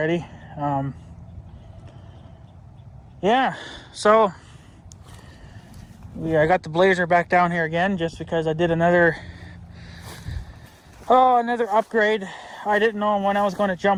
Yeah, so I got the Blazer back down here again just because I did another upgrade. I didn't know when I was going to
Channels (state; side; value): identical; both; correlation 1.00